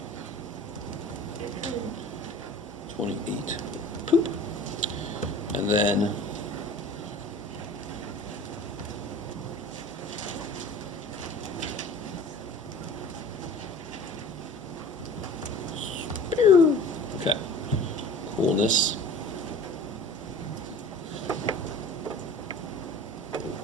28. Poop. And then okay. Coolness.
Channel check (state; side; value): normal; both; correlation 0.42